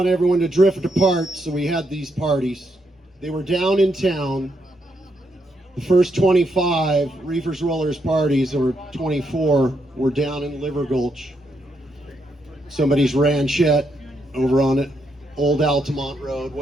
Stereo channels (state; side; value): normal; both; correlation 0.79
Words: everyone to drift apart, so we had these parties. They were down in town. The first 25 Reefers Rollers parties, or 24, were down in Liver Gulch. Somebody's ranchette over on it, Old Altamont Road,